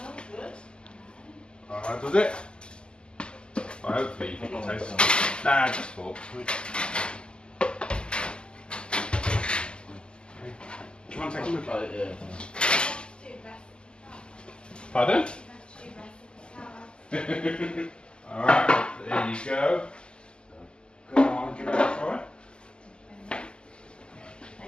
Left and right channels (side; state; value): right; late; 0.049 ms